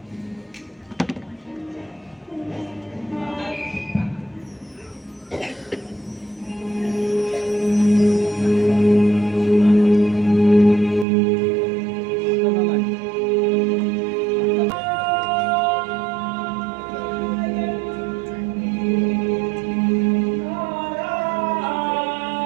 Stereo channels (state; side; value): drops out; left; at 11.1 s